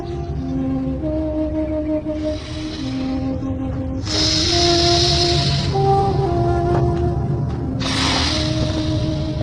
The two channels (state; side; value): identical; both; correlation 1.00